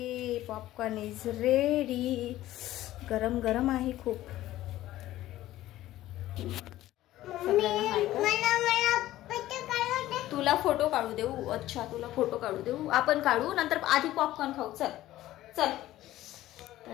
पॉपकॉर्न इज रेडी. गरम गरम आहे खूप. तुला फोटो काढू देऊ? अच्छा, तुला फोटो काढू देऊ. आपण काढू, नंतर आधी पॉपकॉर्न खाऊ. चल चल.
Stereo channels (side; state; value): right; quieter; 14.9 dB